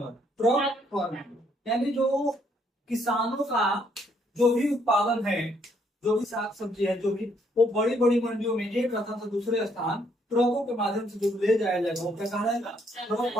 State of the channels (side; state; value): both; normal; correlation 0.69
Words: ट्रक फार्मिंग, यानी जो किसानों का जो भी उत्पादन है, जो भी साग सब्जी है, जो भी वो बड़ी बड़ी मंडियों में एक स्थान से दूसरे स्थान ट्रकों के माध्यम से जो ले जाया जाएगा वो क्या कहलाएगा, ट्रक